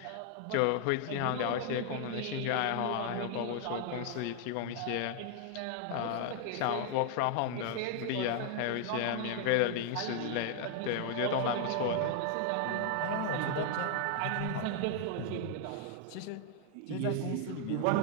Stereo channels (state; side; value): different; both; correlation 0.00